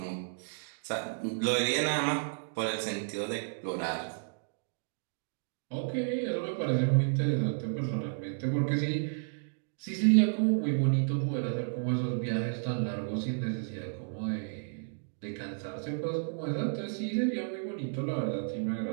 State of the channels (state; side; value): silent; left; digital silence